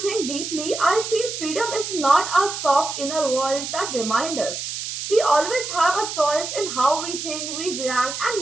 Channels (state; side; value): noise; right; hiss, 6 dB below the sound